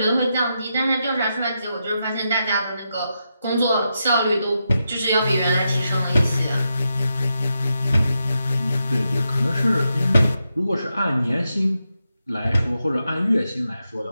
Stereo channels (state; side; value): inverted; both; correlation -0.85